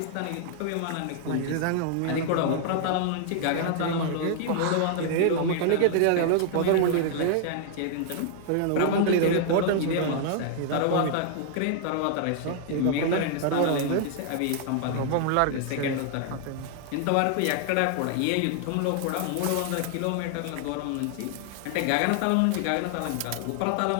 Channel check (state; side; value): different; both; correlation -0.01